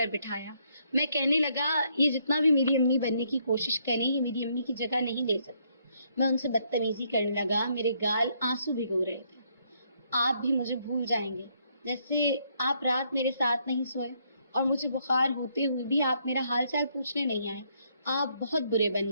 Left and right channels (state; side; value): inverted; both; correlation -0.72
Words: بٹھایا۔ میں کہنے لگا یہ جتنا بھی میری امی بننے کی کوشش کریں یہ میری امی کی جگہ نہیں لے سکتی۔ میں ان سے بدتمیزی کرنے لگا، میرے گال آنسو بھگو رہے تھے۔ آپ بھی مجھے بھول جائیں گے، جیسے آپ رات میرے ساتھ نہیں سوئے اور مجھے بخار ہوتے ہوئے بھی آپ میرا حال چال پوچھنے نہیں آئے۔ آپ بہت برے